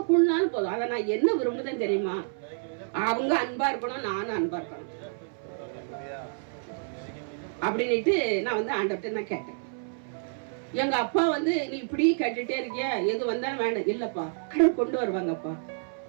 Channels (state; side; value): silent; left; 59 dB below the other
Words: கூடுனாலும் போதும். அதை நான் என்ன விரும்புதேன்னு தெரியுமா? அவங்க அன்பா இருக்கணும், நானும் அன்பா இருக்கணும் அப்படின்னுட்டு நான் வந்து ஆண்டவர்கிட்ட நான் கேட்டேன். எங்க அப்பா வந்து நீ இப்படி கேட்டுட்டே இருக்கிய, எது வந்தாலும் வேண்டாம். இல்லப்பா, கடவுள் கொண்டு வருவாங்கப்பா,